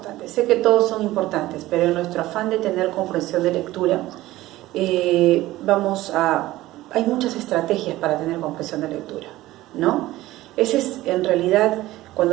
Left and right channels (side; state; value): left; quieter; 16.7 dB